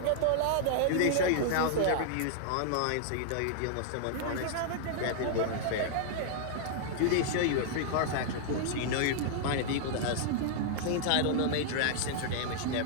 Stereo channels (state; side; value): different; both; correlation -0.01